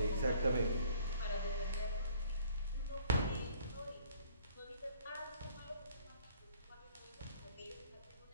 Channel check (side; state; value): both; inverted; correlation -0.57